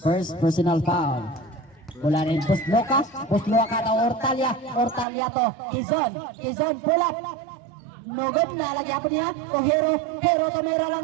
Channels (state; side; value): drops out; left; at 5.1 s